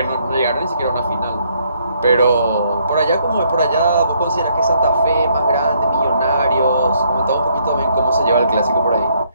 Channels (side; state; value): both; inverted; correlation -0.70